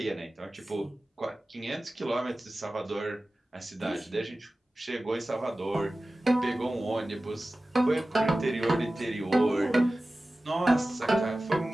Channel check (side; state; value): both; normal; correlation 0.96